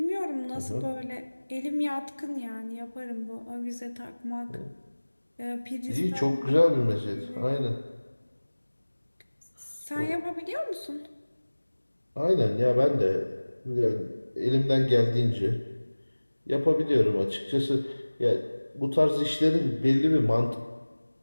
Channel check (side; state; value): both; inverted; correlation -1.00